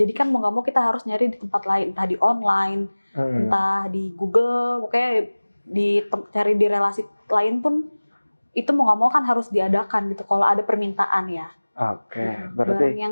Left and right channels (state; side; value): inverted; both; correlation -1.00